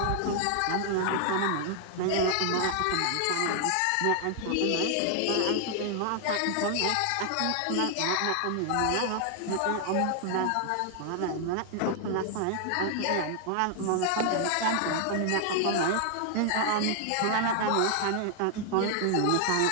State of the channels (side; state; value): both; different; correlation 0.00